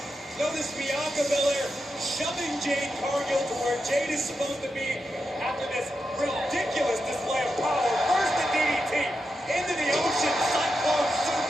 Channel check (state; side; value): normal; both; correlation 0.87